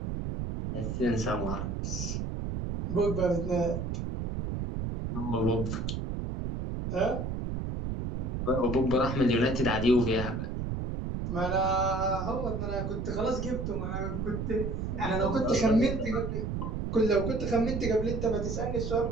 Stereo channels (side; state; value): right; noise; rumble, 3 dB below the sound